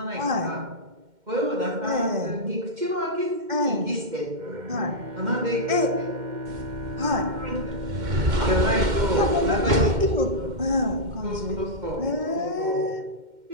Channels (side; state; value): left; late; 2.1 ms